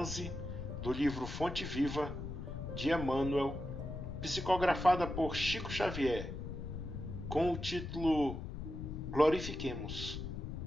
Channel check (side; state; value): left; noise; rumble, 7 dB below the sound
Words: do livro Fonte Viva, de Emmanuel, psicografada por Chico Xavier, com o título Glorifiquemos,